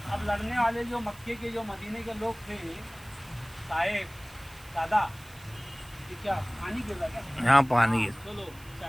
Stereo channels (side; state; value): right; noise; hiss, 22 dB below the sound